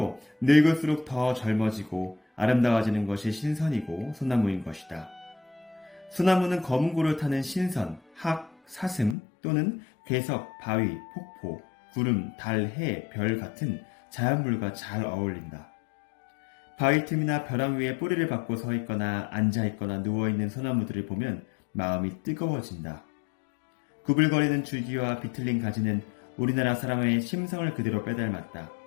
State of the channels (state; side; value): drops out; right; at 9.2 s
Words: 늙을수록 더 젊어지고 아름다워지는 것이 신선이고 소나무인 것이다. 소나무는 검은고를 타는 신선, 학, 사슴 또는 괴석, 바위, 폭포, 구름, 달, 해, 별 같은 자연물과 잘 어울린다. 바위 틈이나 벼랑 위에 뿌리를 받고 서 있거나 앉아 있거나 누워 있는 소나무들을 보면 마음이 뜨거워진다. 구불거리는 줄기와 비틀린 가지는 우리나라 사람의 심성을 그대로 빼닮았다.